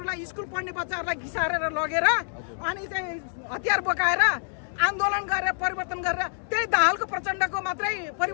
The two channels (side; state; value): right; silent; 60 dB below the other